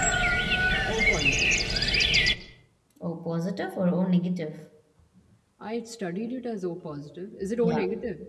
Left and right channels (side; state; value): both; identical; correlation 1.00